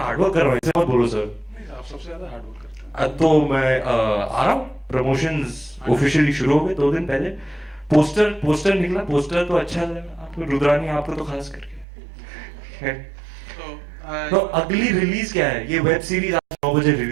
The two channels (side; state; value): left; drops out; at 11.9 s